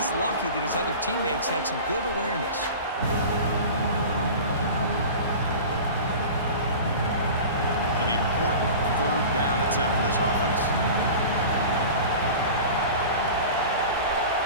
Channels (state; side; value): inverted; both; correlation -0.35